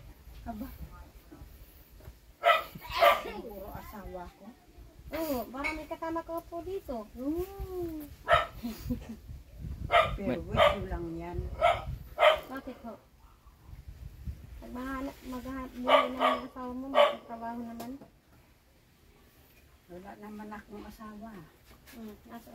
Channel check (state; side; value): identical; both; correlation 1.00